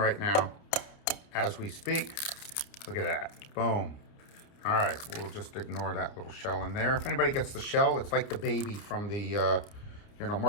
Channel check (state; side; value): late; right; 29 ms